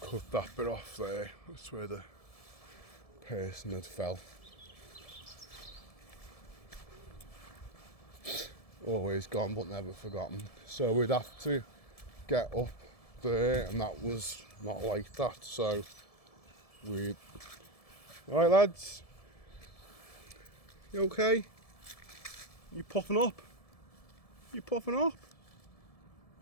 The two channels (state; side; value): late; right; 1.7 ms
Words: cut that bit off there. That's where the person had fell. Always gone but never forgotten. So we'd have to get up there, and that was not like that. So we'd... Alright lads, you okay? You puffing up? You puffing up?